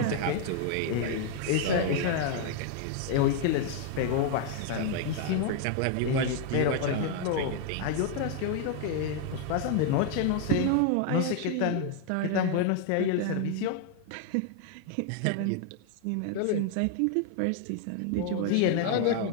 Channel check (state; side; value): different; both; correlation 0.00